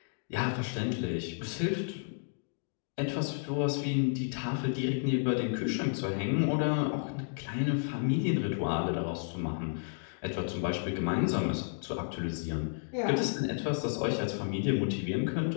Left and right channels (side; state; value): right; silent; digital silence